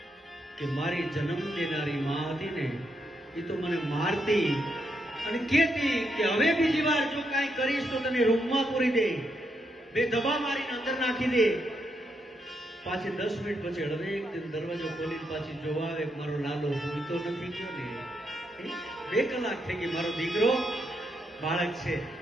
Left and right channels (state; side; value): normal; both; correlation 0.80